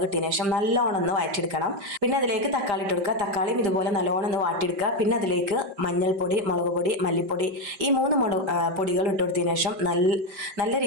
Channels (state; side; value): late; left; 5.1 ms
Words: ഇട്ടതിന് ശേഷം നല്ലോണം ഒന്ന് വഴറ്റിയെടുക്കണം. പിന്നെ അതിലേക്ക് തക്കാളി ഇട്ട് കൊടുക്കുക. തക്കാളിയും ഇതുപോലെ നല്ലോണം ഒന്ന് വാട്ടിയെടുക്കുക. പിന്നെ അതിലേക്ക് മഞ്ഞൾപ്പൊടി, മുളക് പൊടി, മല്ലിപ്പൊടി ഈ മൂന്ന് പൊടികൾ ഇട്ട് കൊടുത്തതിന് ശേഷം നല്ല